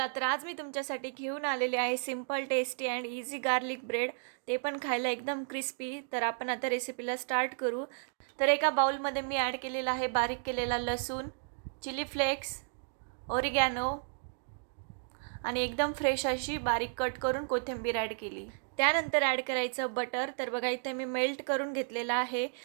तर आज मी तुमच्यासाठी घेऊन आलेले आहे simple tasty and easy garlic bread, ते पण खायला एकदम क्रिस्पी। तर आपण आता रेसिपीला स्टार्ट करू। तर एका बाउलमध्ये मी ॲड केलेला आहे बारीक केलेला लसूण, चिली फ्लेक्स, ओरिगॅनो आणि एकदम फ्रेश अशी बारीक कट करून कोथिंबीर ॲड केली। त्यानंतर ॲड करायचं बटर। तर बघा इथे मी मेल्ट करून घेतलेला आहे।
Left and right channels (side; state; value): left; silent; digital silence